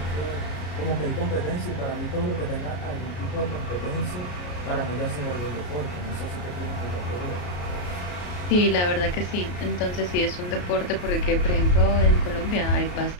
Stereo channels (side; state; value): right; late; 33 ms